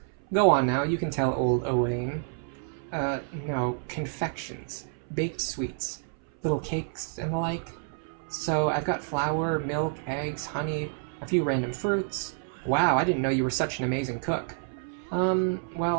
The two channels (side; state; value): left; silent; 59 dB below the other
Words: Go on now, you can tell old Owain. No, confections. Baked sweets. Little cakes and the like. So, I've got flour, milk, eggs, honey, a few random fruits. Wow, I didn't know you were such an amazing cook. Well,